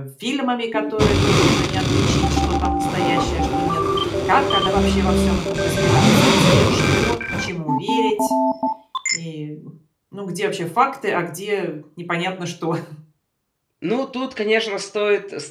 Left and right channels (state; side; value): identical; both; correlation 1.00